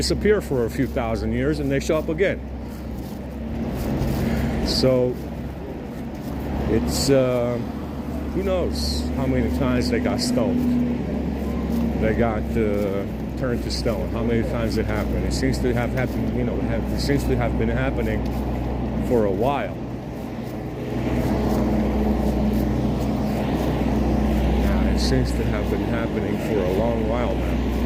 for a few thousand years, and they show up again. So it's who knows how many times they got stoned. They got turned to stone. How many times it happened? It seems to have happened, it seems to have been happening for a while. seems to have been happening for a long while now.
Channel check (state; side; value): identical; both; correlation 1.00